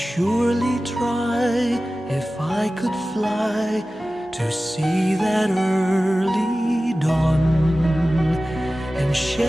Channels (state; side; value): normal; both; correlation 0.96